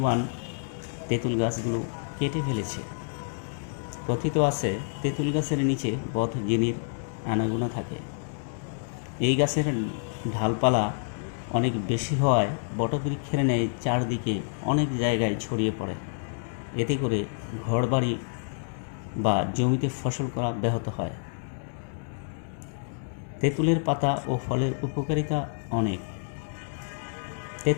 তেঁতুল গাছগুলো কেটে ফেলেছে। কথিত আছে তেঁতুল গাছের নিচে বদ জিনির আনাগোনা থাকে। এই গাছের ঢালপালা অনেক বেশি হওয়ায় বটবৃক্ষের ন্যায় চারদিকে অনেক জায়গায় ছড়িয়ে পড়ে। এতে করে ঘরবাড়ি বা জমিতে ফসল করা ব্যাহত হয়। তেঁতুলের পাতা ও ফলের উপকারিতা অনেক।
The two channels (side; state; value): right; silent; digital silence